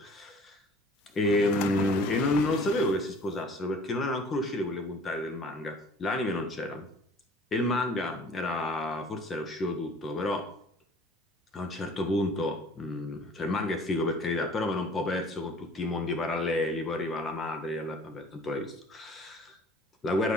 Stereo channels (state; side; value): normal; both; correlation 0.50